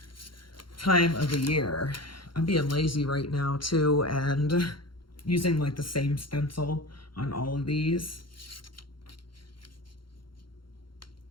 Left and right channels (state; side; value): late; right; 0.73 ms